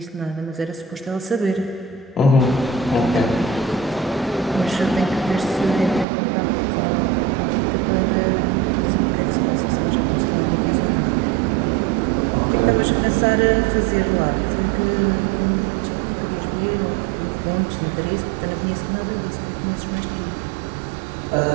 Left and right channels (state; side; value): drops out; left; at 6.1 s